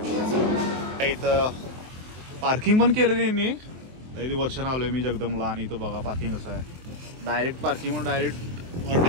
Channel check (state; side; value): late; left; 23 ms